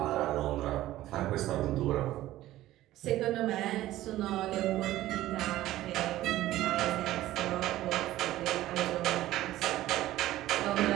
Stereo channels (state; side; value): quieter; left; 15.1 dB